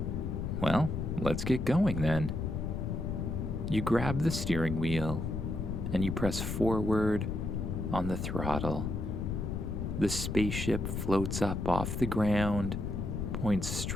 Well, let's get going then. You grab the steering wheel and you press forward on the throttle. The spaceship floats up off the ground, points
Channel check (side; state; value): left; noise; rumble, 2 dB below the sound